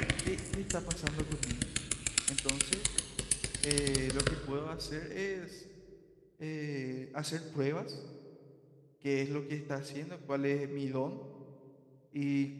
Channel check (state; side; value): identical; both; correlation 1.00